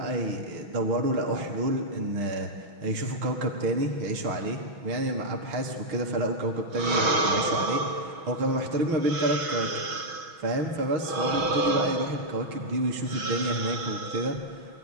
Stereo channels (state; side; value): late; left; 6.3 ms